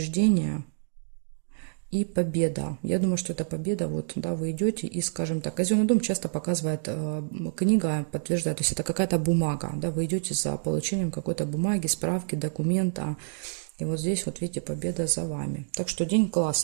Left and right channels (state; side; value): silent; left; digital silence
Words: и победа. Я думаю, что это победа. Вот, да, вы идете и, скажем так, казенный дом часто показывает, книга подтверждает, то есть это какая-то бумага, да, вы идете за получением какой-то бумаги, справки, документа. И вот здесь вот видите, победа за вами. Так что день